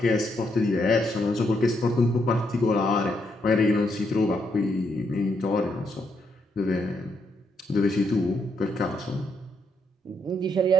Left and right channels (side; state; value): both; normal; correlation 0.77